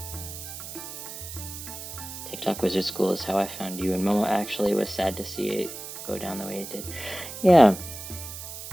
TikTok Wizard School is how I found you, and Momo actually was sad to see it go down the way it did. Yeah.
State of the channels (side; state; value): right; noise; hiss, 10 dB below the sound